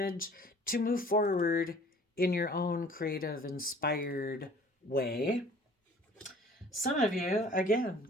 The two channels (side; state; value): both; normal; correlation 0.51